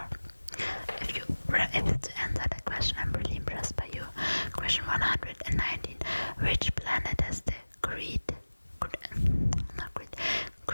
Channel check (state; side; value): inverted; both; correlation -1.00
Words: If you were able to answer that question, I'm really impressed by you. Question 119. Which planet has the great